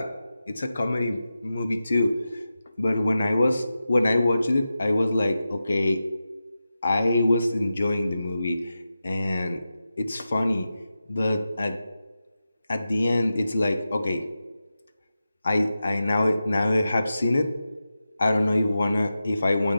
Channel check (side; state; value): both; inverted; correlation -0.92